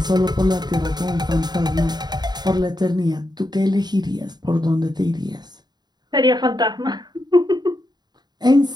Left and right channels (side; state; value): left; late; 0.20 ms